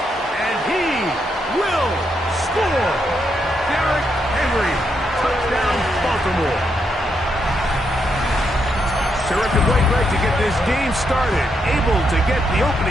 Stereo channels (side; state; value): both; normal; correlation 0.80